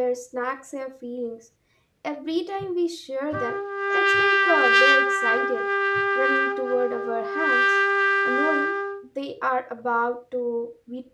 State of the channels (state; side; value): identical; both; correlation 1.00